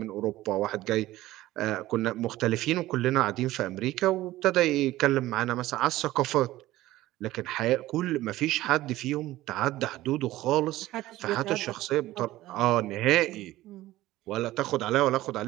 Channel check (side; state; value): left; quieter; 16.2 dB